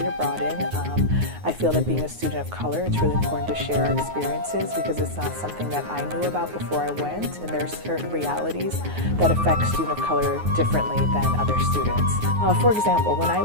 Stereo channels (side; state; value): left; late; 9.5 ms